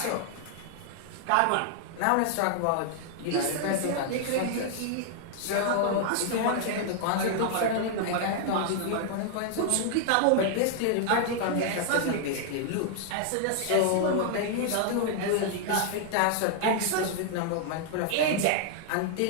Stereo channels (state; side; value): different; both; correlation 0.00